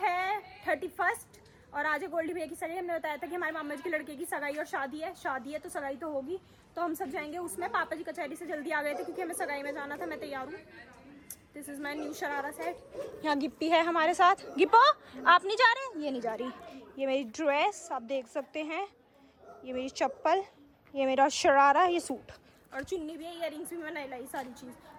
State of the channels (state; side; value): identical; both; correlation 1.00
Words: 31 और आज है गोल्डी भैया की सगाई। हमने बताया था कि हमारे मामा जी के लड़के की सगाई और शादी है तो सगाई तो होगी, तो हम सब जाएंगे उसमें। पापा जी कचहरी से जल्दी आ गए थे क्योंकि हमें सगाई में जाना था। मैं तैयार हूँ। This is my new sharara set. यहाँ गिप्पी है हमारे साथ। गिप्पो, आप नहीं जा रहे? ये नहीं जा रही। ये मेरी ड्रेस आप देख सकते हैं, ये मेरी चप्पल, ये मेरा शरारा, ये सूट और चुन्नी भी है, इयररिंग्स भी मैंने लाई, सारी चीज़।